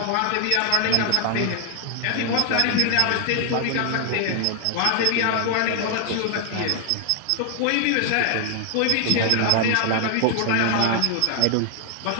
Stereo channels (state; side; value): different; both; correlation 0.00